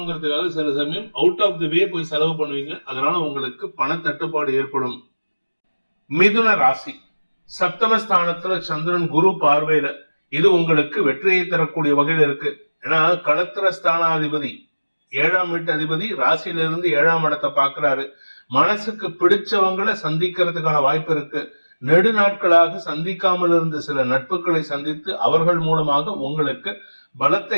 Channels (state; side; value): inverted; both; correlation -1.00